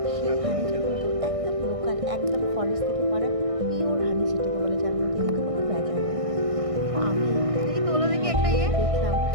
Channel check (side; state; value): left; late; 1.6 ms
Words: সেই হানিটা কিন্তু একদম লোকাল, একদম ফরেস্ট থেকে পাড়া পিওর হানি যেটাকে বলে, যার মধ্যে কিন্তু কোনো ভেজাল নেই। তো আমি দেখি তোলো দেখি একটা খেয়ে ইয়ে। দেখলাম